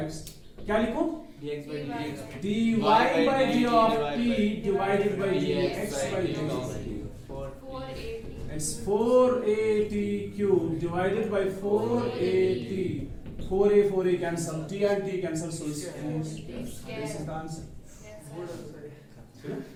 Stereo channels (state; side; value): identical; both; correlation 1.00